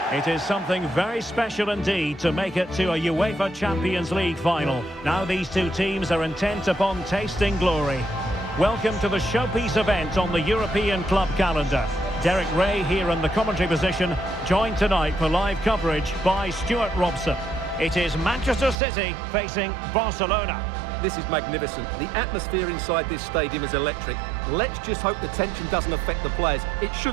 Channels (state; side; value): drops out; left; at 18.8 s